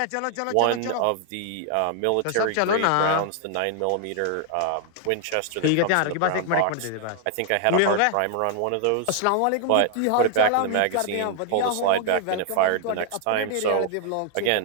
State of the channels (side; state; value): both; different; correlation 0.00